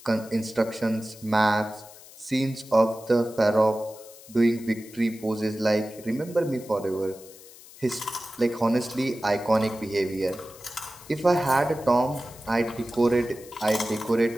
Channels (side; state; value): left; noise; hiss, 20 dB below the sound